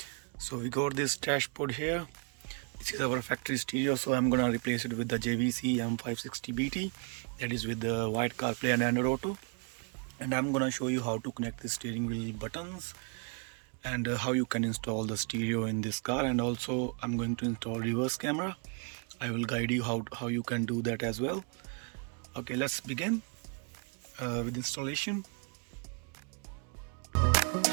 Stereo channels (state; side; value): quieter; left; 38.4 dB